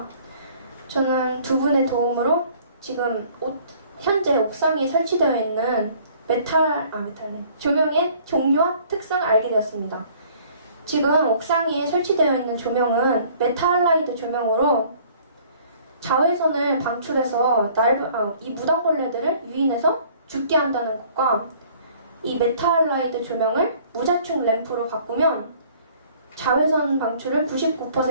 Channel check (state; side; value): inverted; both; correlation -0.55